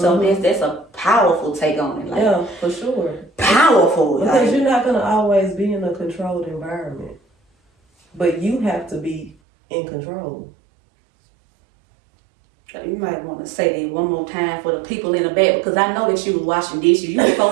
that's a powerful take on it. Like, yeah, for sure. Powerful. Because you're not gonna always be in a controlled environment, but you have to be in control. You might want to say that one more time for the people in the back, because I know that you was washing dishes, you was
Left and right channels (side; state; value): left; drops out; at 9.3 s